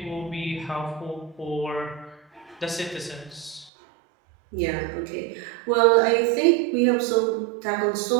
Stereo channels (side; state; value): left; drops out; at 3.7 s